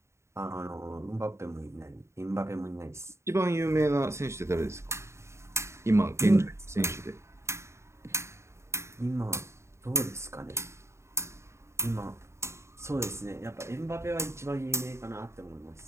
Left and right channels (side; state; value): left; late; 0.13 ms